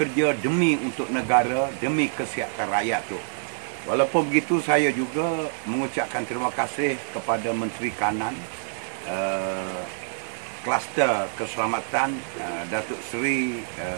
demi untuk negara, demi kesihatan rakyat tu. Walaupun begitu, saya juga mengucapkan terima kasih kepada Menteri Kanan, Kluster Keselamatan, Datuk Seri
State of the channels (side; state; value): left; silent; digital silence